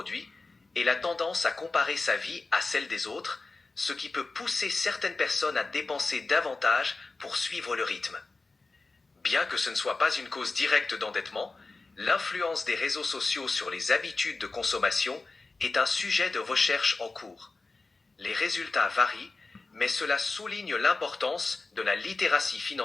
et la tendance à comparer sa vie à celle des autres, ce qui peut pousser certaines personnes à dépenser davantage pour suivre le rythme. Bien que ce ne soit pas une cause directe d'endettement, l'influence des réseaux sociaux sur les habitudes de consommation est un sujet de recherche en cours. Les résultats varient, mais cela souligne l'importance de la littératie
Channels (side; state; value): right; quieter; 3.7 dB